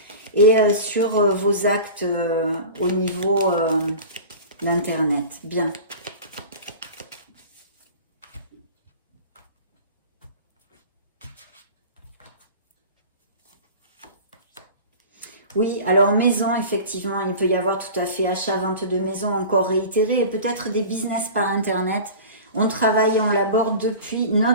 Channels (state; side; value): inverted; both; correlation -0.37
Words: et sur vos actes au niveau d'Internet. Bien. Oui, alors maison, effectivement, il peut y avoir tout à fait achat, vente de maison encore réitéré et peut-être des business par Internet. On travaille et on l'aborde depuis